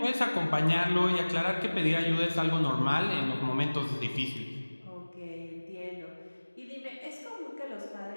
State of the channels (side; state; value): both; inverted; correlation -1.00